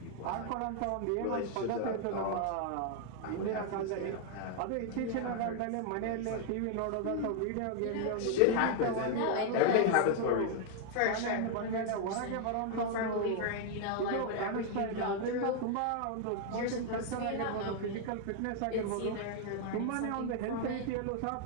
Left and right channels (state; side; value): different; both; correlation 0.00